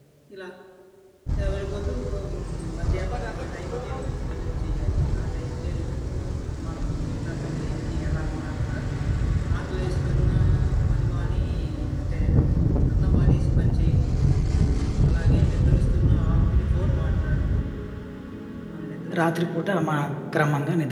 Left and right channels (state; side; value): identical; both; correlation 1.00